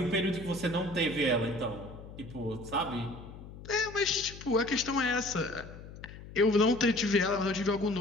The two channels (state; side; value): noise; left; hum, 15 dB below the sound